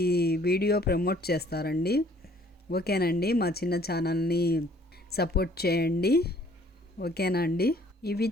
వీడియో ప్రమోట్ చేస్తారండి. ఓకేనండి, మా చిన్న ఛానల్ని సపోర్ట్ చేయండి. ఓకేనా అండి? ఇవి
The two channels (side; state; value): both; normal; correlation 0.58